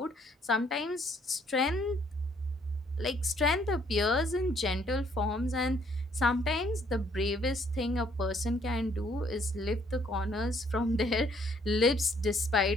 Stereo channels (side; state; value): both; normal; correlation 0.65